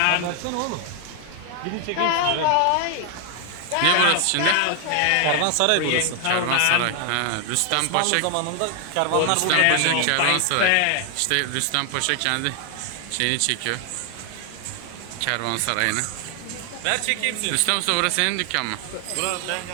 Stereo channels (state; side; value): different; both; correlation 0.00